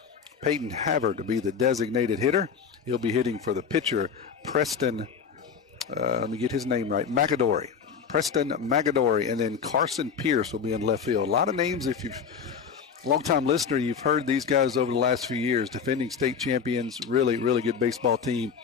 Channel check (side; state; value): right; quieter; 6.7 dB